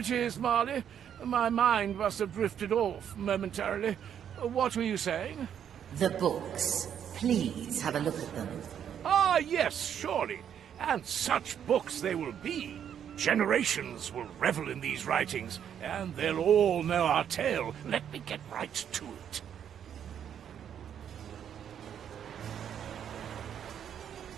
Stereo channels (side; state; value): left; quieter; 9.0 dB